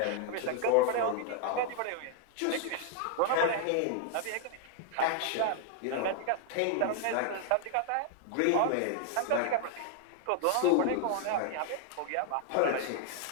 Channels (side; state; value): both; different; correlation 0.00